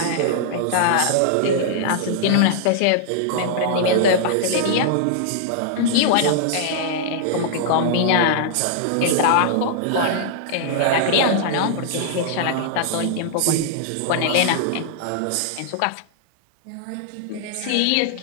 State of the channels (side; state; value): both; different; correlation -0.01